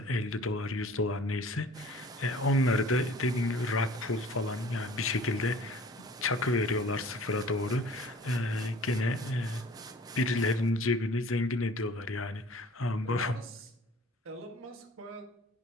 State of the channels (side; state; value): both; normal; correlation 0.49